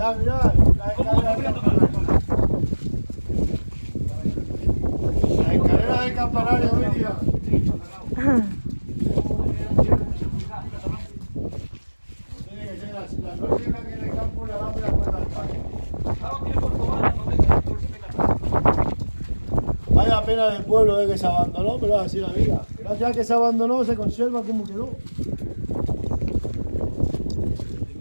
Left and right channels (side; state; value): both; inverted; correlation -1.00